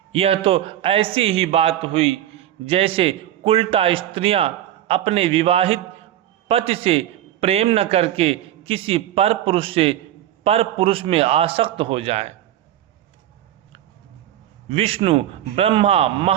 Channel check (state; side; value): quieter; left; 12.2 dB